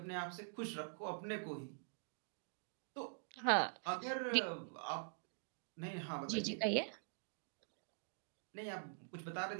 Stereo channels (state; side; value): silent; left; digital silence